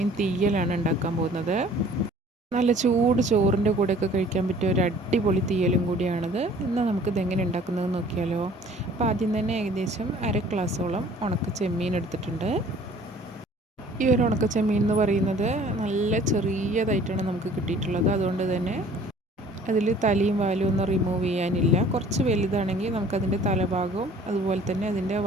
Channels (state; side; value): normal; both; correlation 0.52